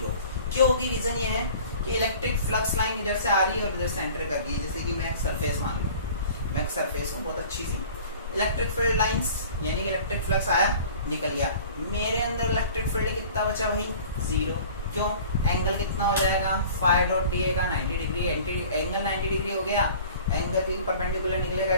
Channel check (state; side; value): inverted; both; correlation -0.46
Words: क्यों होगी? रीजन ये है कि इलेक्ट्रिक फ्लक्स लाइन इधर से आ रही है और इधर से एंटर कर रही है। जैसे कि मैं एक सरफेस मान लूं, मैं एक सरफेस हूँ बहुत अच्छी सी, इलेक्ट्रिक फील्ड लाइंस यानी कि इलेक्ट्रिक फ्लक्स आया निकल गया, मेरे अंदर इलेक्ट्रिक फील्ड कितना बचा भाई? 0। क्यों? एंगल कितना हो जाएगा? फाई डॉट डी ए का 90 डिग्री, एंगल 90 डिग्री हो गया, एंगल भी परपेंडिकुलर निकलेगा,